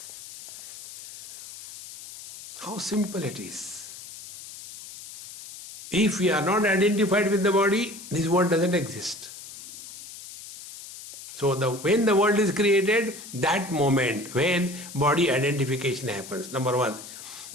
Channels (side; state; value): left; noise; hiss, 14 dB below the sound